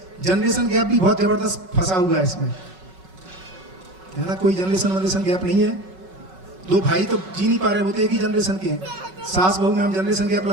जनरेशन गैप भी बहुत जबरदस्त फंसा हुआ है इसमें, है ना। कोई जनरेशन गैप नहीं है, दो भाई तो जी नहीं पा रहे, वो तो एक ही जनरेशन के हैं। सास बहू में हम जनरेशन गैप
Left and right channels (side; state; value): left; late; 5.4 ms